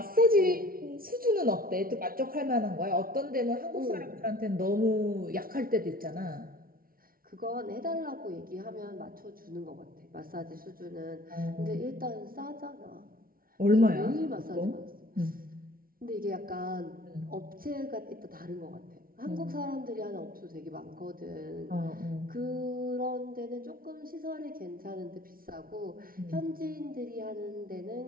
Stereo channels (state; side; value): late; left; 0.43 ms